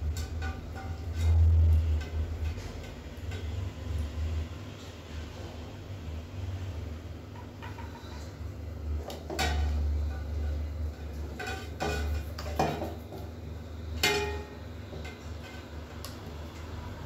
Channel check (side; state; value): both; identical; correlation 1.00